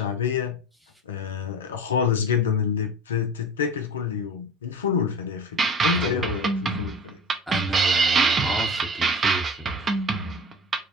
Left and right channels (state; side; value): normal; both; correlation 0.33